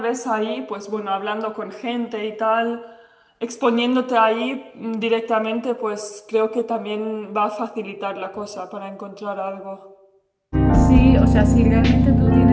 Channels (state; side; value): identical; both; correlation 1.00